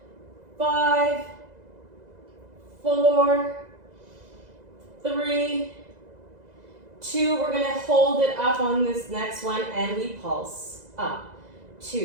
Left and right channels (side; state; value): left; late; 2.0 ms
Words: 5, 4, 3, 2. We're gonna hold it up on this next one and we pulse up.